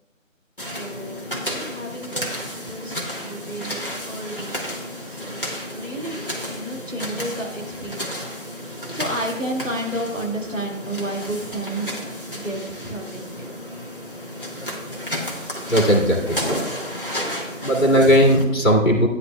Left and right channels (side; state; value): both; normal; correlation 0.09